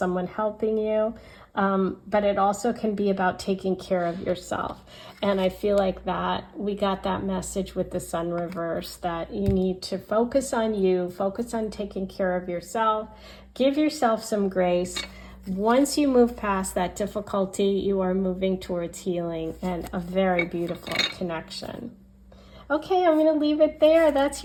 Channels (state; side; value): identical; both; correlation 1.00